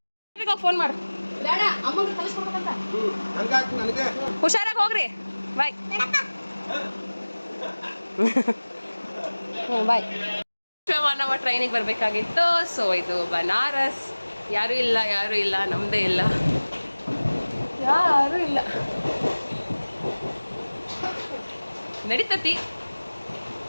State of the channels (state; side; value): inverted; both; correlation -1.00